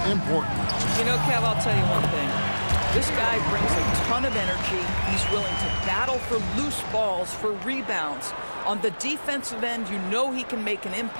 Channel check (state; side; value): inverted; both; correlation -1.00